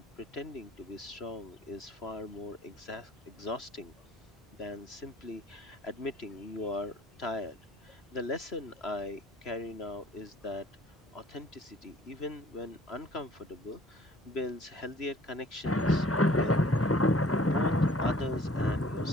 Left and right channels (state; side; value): normal; both; correlation 0.54